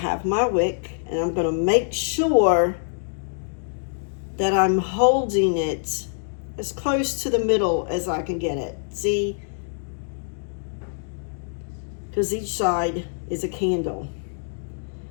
my wick, and I'm going to make sure that I'm holding it as close to the middle as I can get it. See? Because each side is a candle.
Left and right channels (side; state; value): right; silent; digital silence